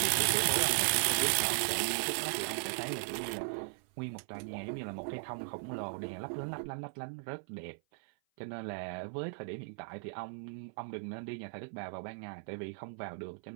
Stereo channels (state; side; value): silent; left; 53 dB below the other